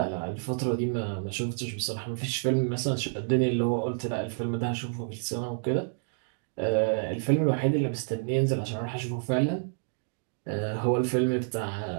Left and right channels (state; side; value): silent; left; digital silence